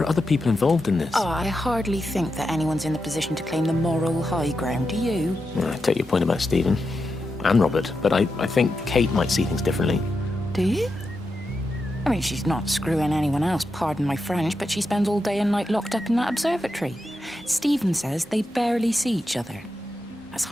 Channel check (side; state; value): both; normal; correlation 0.87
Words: are other people involved in this. Oh, I hardly think that anyone's in the position to claim the moral high ground, do you? Well, I take your point about Stephen. And Robert. But I think Kate might see things differently. Do you? I mean, she's not screwing anyone else, pardon my French, but she spends all day and night locked up in that observatory. Stephen says they barely see each other. That's